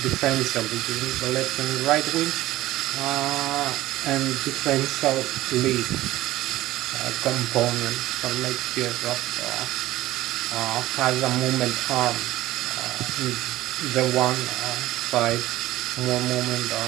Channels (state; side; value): quieter; left; 16.1 dB